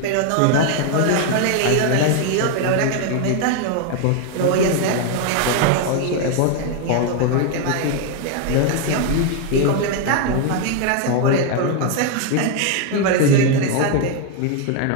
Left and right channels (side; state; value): both; different; correlation 0.01